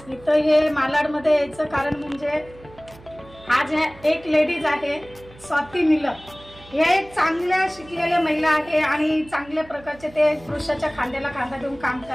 इथं हे मालाडमध्ये यायचं कारण म्हणजे आज एक लेडीज आहे स्वाती निलम। हे एक चांगल्या शिकलेल्या महिला आहे आणि चांगल्या प्रकारचे ते पुरुषाच्या खांद्याला खांदा देऊन काम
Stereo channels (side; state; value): right; noise; hum, 22 dB below the sound